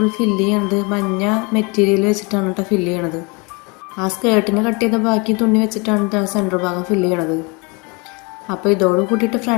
ഉള്ളിൽ ഫില്ല് ചെയ്യണത് മഞ്ഞ മെറ്റീരിയൽ വെച്ചിട്ടാണ് കേട്ടോ ഫില്ല് ചെയ്യണത്. ആ സ്കേർട്ടിന് കട്ട് ചെയ്ത ബാക്കി തുണി വെച്ചിട്ടാണ് സെൻറ്റർ ഭാഗം ഫില്ല് ചെയ്യണത്. അപ്പോൾ ഇതോട് കൂട്ടിയിട്ട്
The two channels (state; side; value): quieter; right; 29.7 dB